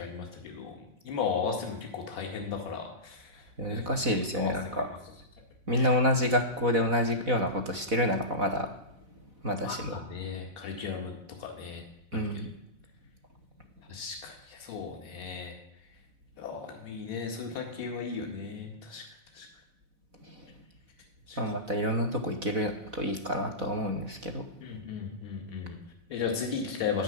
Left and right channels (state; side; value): late; left; 4.0 ms